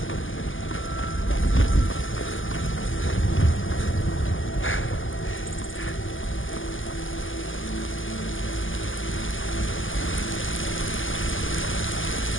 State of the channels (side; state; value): right; late; 0.58 ms